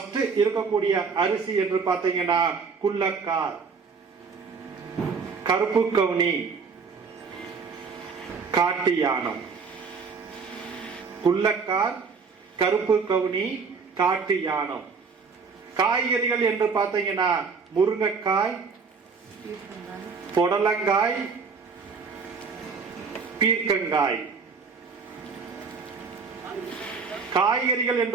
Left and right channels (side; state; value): left; quieter; 5.3 dB